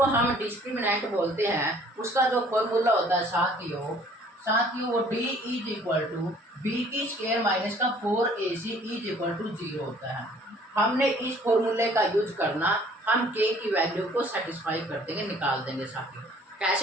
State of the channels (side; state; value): both; normal; correlation 0.56